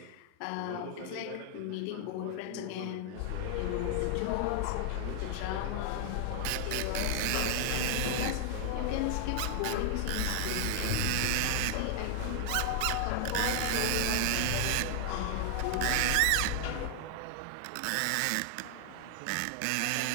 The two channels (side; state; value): both; different; correlation 0.00